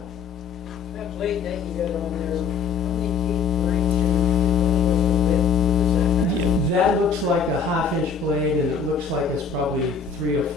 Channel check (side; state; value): right; quieter; 5.8 dB